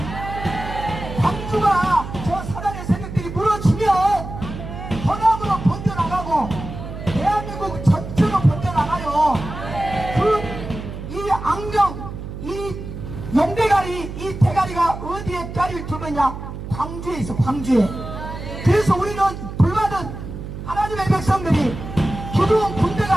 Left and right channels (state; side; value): noise; right; hum, 9 dB below the sound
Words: 광주가 저 사단의 세력들이 무너지면 번화으로 번져나가고 대한민국 전체로 번져나가요. 이 악령, 이 용대가리, 이 대가리가 어디에 자리를 두느냐? 광주에 있어, 광주에. 그래서 우리는 불받은 하나님의 백성들이 기도원